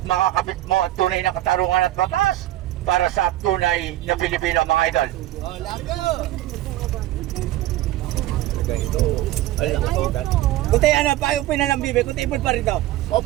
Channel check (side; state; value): left; quieter; 15.1 dB